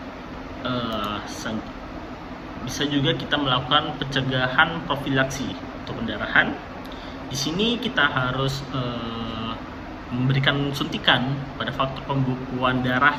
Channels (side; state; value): both; identical; correlation 1.00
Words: Bisa juga kita melakukan pencegahan profilaksi untuk pendarahan. Di sini kita harus memberikan suntikan pada faktor pembekuan darah